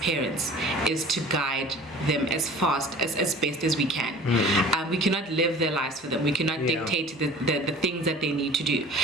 is to guide them as best as we can. We cannot live their lives for them. We cannot dictate the things that they need to do.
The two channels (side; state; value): both; normal; correlation 0.44